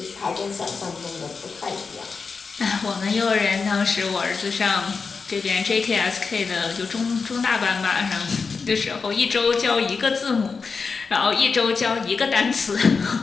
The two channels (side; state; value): right; quieter; 4.9 dB